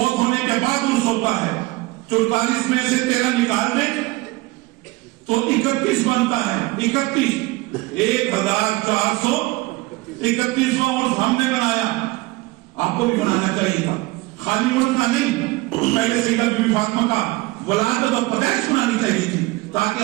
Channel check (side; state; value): left; quieter; 21.2 dB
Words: ہونے کے بعد عرس ہوتا ہے. 44 میں سے 13 نکال دیں تو 31 بنتا ہے. 31 1431واں عرس ہم نے بنایا. آپ کو بھی بنانا چاہیے تھا، خالی عرس کا نہیں. پہلے سیدہ بی بی فاطمہ کا ولادت اور پیدائش بنانی چاہیے تھی تاکہ